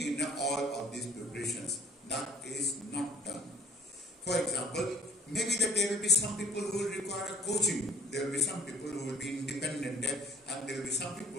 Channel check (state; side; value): normal; both; correlation 0.53